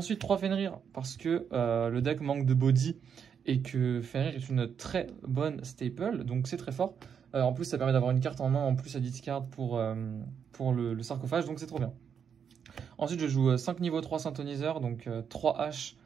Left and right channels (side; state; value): left; quieter; 7.4 dB